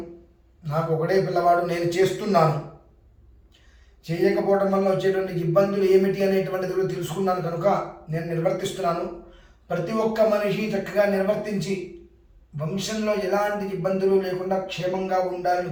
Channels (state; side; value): identical; both; correlation 1.00